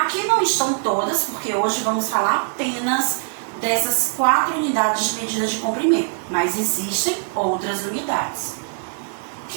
não estão todas, porque hoje vamos falar apenas dessas 4 unidades de medida de comprimento, mas existem outras unidades.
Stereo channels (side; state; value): left; silent; digital silence